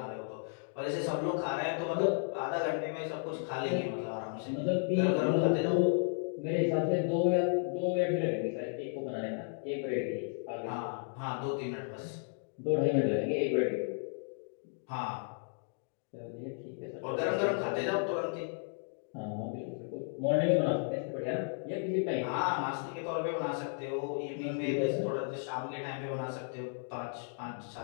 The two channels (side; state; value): right; silent; 55 dB below the other